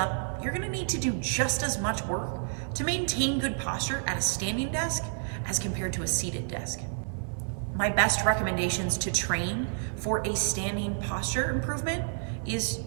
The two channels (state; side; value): silent; left; digital silence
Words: you're gonna need to do just as much work to maintain good posture at a standing desk as compared to a seated desk. My best recommendations to train for a standing posture improvement is